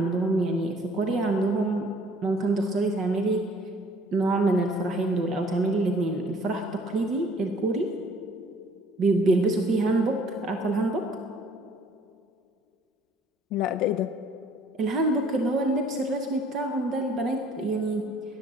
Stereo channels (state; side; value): normal; both; correlation 0.57